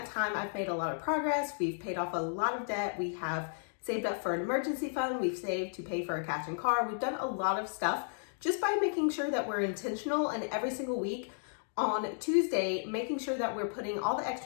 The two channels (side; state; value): right; silent; digital silence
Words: time, I've made a lot of progress. We've paid off a lot of debt. We have saved up for an emergency fund. We've saved to pay for a cash and car. We've done a lot of stuff just by making sure that we're intentional, and every single week on Tuesday, making sure that we're putting all the